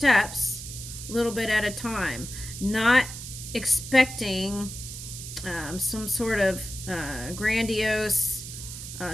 a little bit at a time, not expecting some sort of grandiose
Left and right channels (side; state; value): right; noise; hiss, 10 dB below the sound